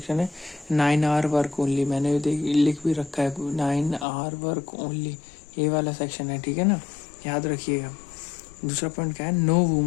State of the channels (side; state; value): right; drops out; at 4.0 s